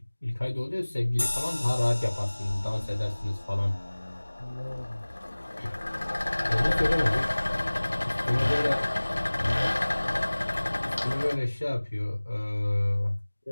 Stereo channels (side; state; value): both; inverted; correlation -1.00